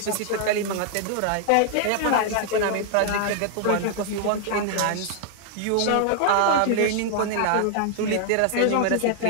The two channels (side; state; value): both; different; correlation 0.00